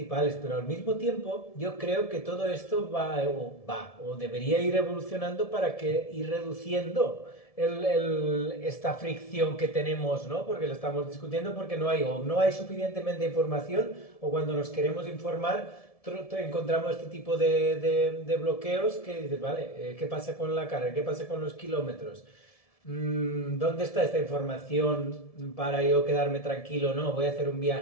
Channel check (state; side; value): late; right; 1.7 ms